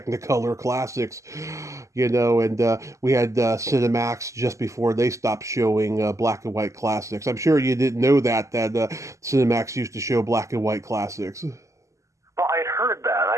classics, and we had Cinemax just before they stopped showing black and white classics. I'm sure you didn't know that Cinemax used to show black and white classics. Well, I'd heard that.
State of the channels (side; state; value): left; late; 0.15 ms